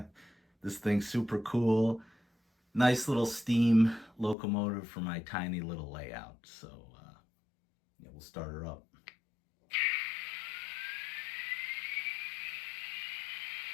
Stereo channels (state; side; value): drops out; right; at 4.4 s